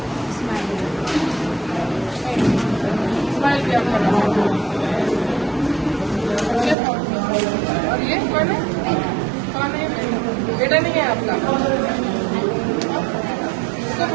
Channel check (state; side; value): drops out; left; at 6.8 s